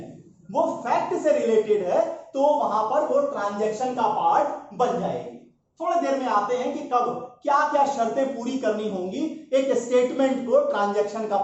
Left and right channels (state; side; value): identical; both; correlation 1.00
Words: वो फैक्ट से रिलेटेड है, तो वहां पर वो ट्रांजैक्शन का पार्ट बन जाएगी। थोड़ी देर में आते हैं कि कब क्या क्या शर्तें पूरी करनी होंगी एक स्टेटमेंट को ट्रांजैक्शन का